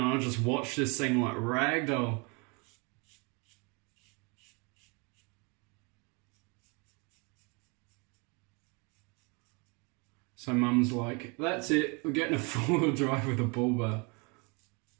I just watched this thing like ragdoll. So mum's like, that's it, we're getting a four-wheel drive with a bull bar.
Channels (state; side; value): quieter; left; 31.1 dB